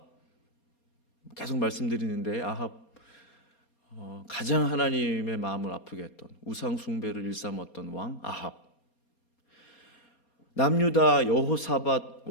계속 말씀드리는데 아합 가장 하나님의 마음을 아프게 했던 우상 숭배를 일삼았던 왕 아합. 남유다 여호사밧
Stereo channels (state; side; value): late; right; 4.3 ms